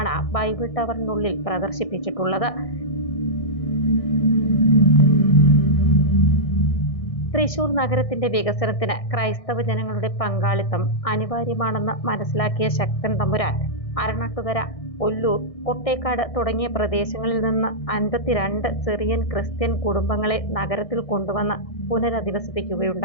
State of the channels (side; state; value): right; late; 1.6 ms